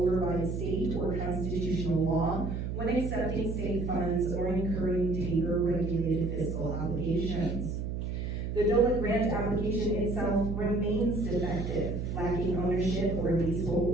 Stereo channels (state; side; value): noise; right; hum, 3 dB below the sound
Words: state or constitutional law when accepting state funds or incurring taper-regulated fiscal obligations. The Dole grant application itself remains defective, lacking ownership or